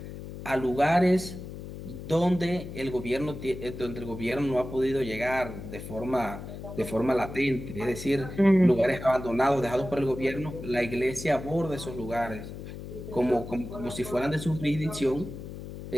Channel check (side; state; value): left; noise; hum, 10 dB below the sound